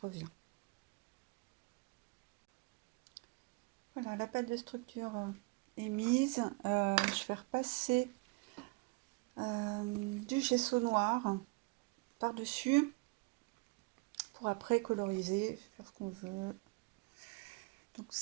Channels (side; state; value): left; quieter; 27.9 dB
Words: Voilà, la pâte de structure est mise. Je vais repasser du gesso noir par-dessus pour après coloriser, faire ce qu'on veut. Donc